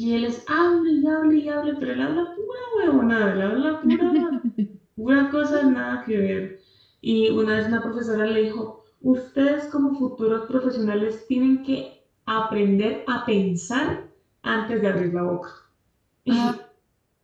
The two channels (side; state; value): both; identical; correlation 1.00